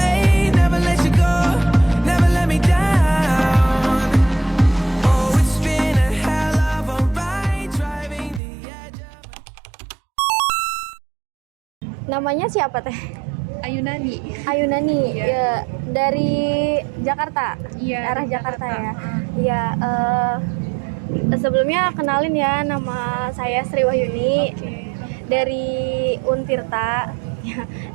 Never let you go, never let me down. Oh, it's been a hell of a ride, driving the edge of... Namanya siapa teh? Ayunani. Ayunani, ya, dari Jakarta, arah Jakarta ya. Iya, sebelumnya kenalin ya, nama saya Sri Wahyuni dari Untirta. Ya,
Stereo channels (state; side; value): drops out; left; at 8.4 s